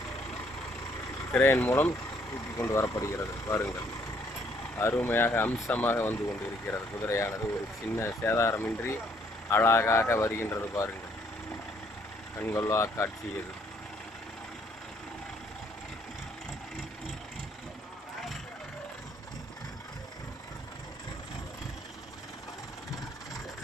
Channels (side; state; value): both; normal; correlation 0.66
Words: கிரேன் மூலம் தூக்கி கொண்டு வரப்படுகிறது. பாருங்கள், அருமையாக அம்சமாக வந்து கொண்டு இருக்கிறது. குதிரையானது ஒரு சின்ன சேதாரமின்றி அழகாக வருகின்றது. பாருங்கள், கண்கொள்ளா காட்சி இது.